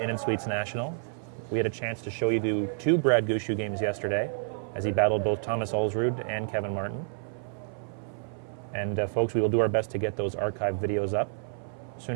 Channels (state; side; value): silent; left; 57 dB below the other